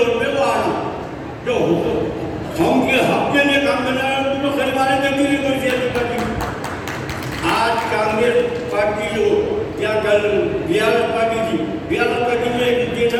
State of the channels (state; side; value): identical; both; correlation 1.00